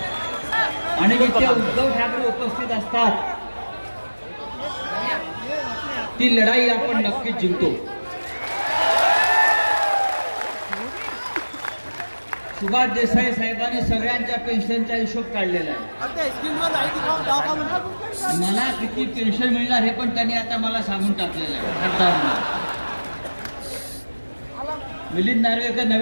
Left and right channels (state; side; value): inverted; both; correlation -1.00